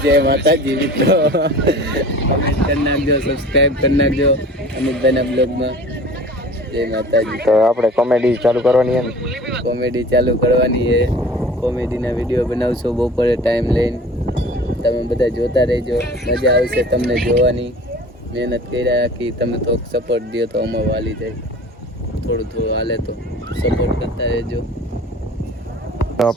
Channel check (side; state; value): both; normal; correlation 0.43